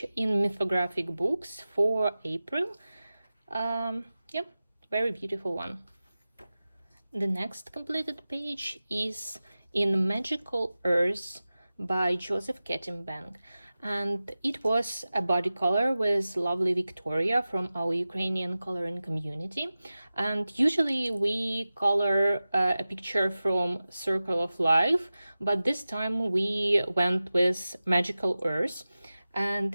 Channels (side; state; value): both; inverted; correlation -0.96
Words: in mythographic books for April. Yeah, very beautiful one. The next completed page is in Magical Earth by Joseph Kettenbank, and it was a body color with lovely Victoria from our Ukrainian coloring community. And usually we color a picture from Circle of Life, but this time we went with Magical Earth,